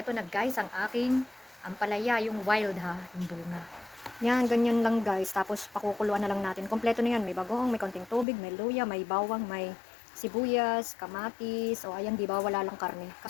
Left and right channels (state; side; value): drops out; right; at 8.2 s